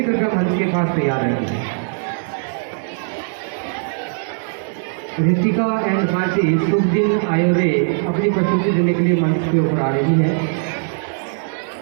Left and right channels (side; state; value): left; silent; digital silence